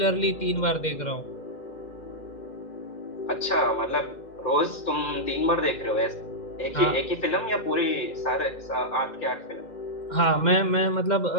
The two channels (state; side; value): late; right; 2.1 ms